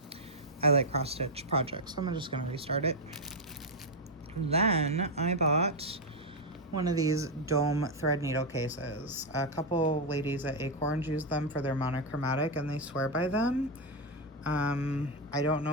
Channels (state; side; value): normal; both; correlation 0.03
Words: I Like Cross Stitch project, so I'm just gonna restart it. Then I bought one of these dome thread needle cases. A couple ladies at Acorns use them for their monochromatic and they swear by them. I don't